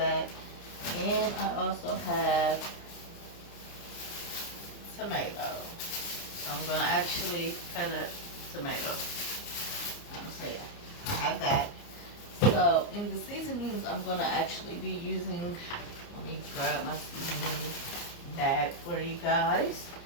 And I also have tomato. So I'm going to actually cut up tomato. So yeah, I have that. So in the seasonings, I'm going to actually be using, let me grab my seasoning bag for you guys.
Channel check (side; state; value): right; late; 29 ms